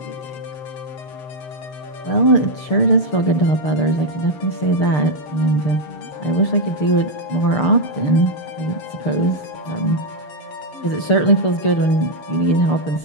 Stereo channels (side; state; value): right; late; 6.7 ms